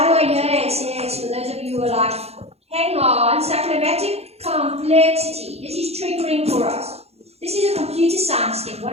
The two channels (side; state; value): left; late; 0.30 ms